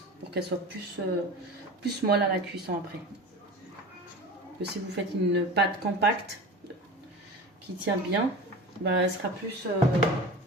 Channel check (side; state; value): both; normal; correlation 0.34